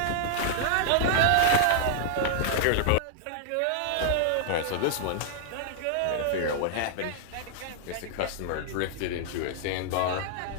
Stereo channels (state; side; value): different; both; correlation -0.01